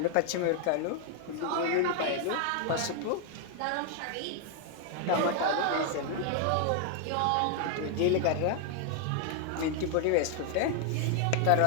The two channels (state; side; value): different; both; correlation 0.00